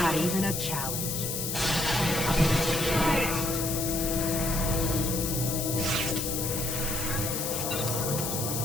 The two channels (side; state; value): left; noise; hiss, 2 dB below the sound